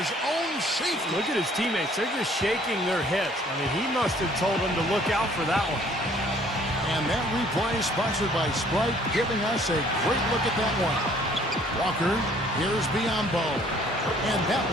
own safety. Look at his teammates. They're just shaking their heads. I mean, he must have told them to look out for that one. And that replay sponsored by Sprite, giving us a great look at that one. Walker, here's Biombo. And that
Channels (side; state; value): both; normal; correlation 0.58